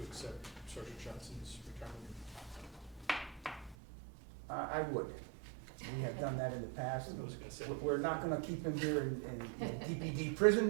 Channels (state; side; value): drops out; left; at 3.8 s